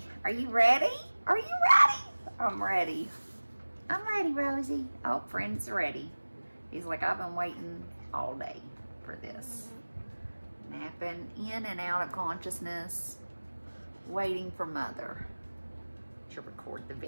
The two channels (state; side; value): inverted; both; correlation -1.00